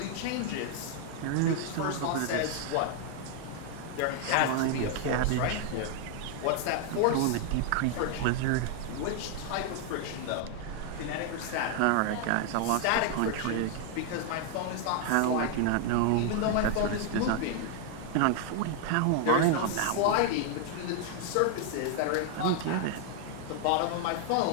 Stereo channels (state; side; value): different; both; correlation 0.00